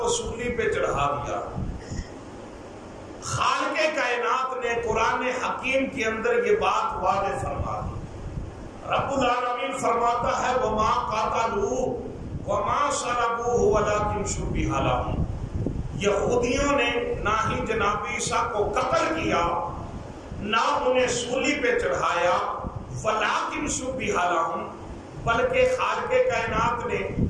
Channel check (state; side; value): identical; both; correlation 1.00